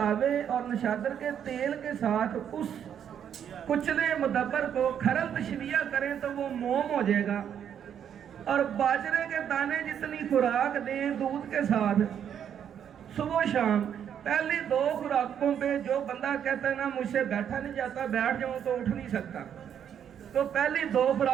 और नौशादर के तेल के साथ उस कुचले मुदब्बर को खरल तशविया करें तो वो मोम हो जाएगा। और बाजरे के दाने जितनी खुराक दें दूध के साथ सुबह शाम, पहली 2 खुराकों पे जो बंदा कहता है ना मुझसे बैठा नहीं जाता, बैठ जाऊं तो उठ नहीं सकता, तो पहली 2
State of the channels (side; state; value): left; quieter; 8.9 dB